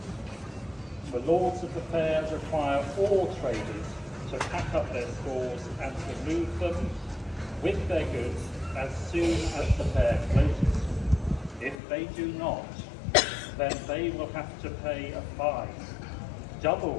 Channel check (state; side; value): drops out; right; at 11.8 s